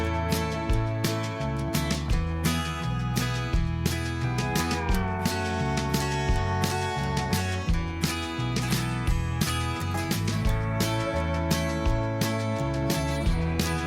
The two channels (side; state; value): both; identical; correlation 1.00